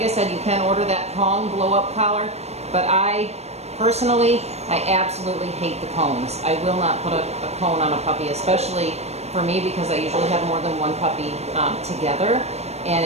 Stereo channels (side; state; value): left; late; 0.31 ms